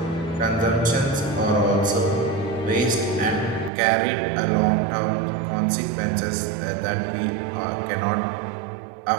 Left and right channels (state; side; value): drops out; left; at 3.7 s